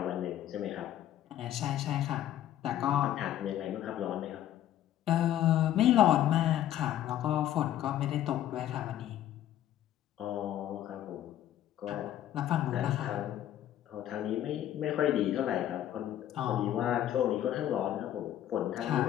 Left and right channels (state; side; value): quieter; right; 11.9 dB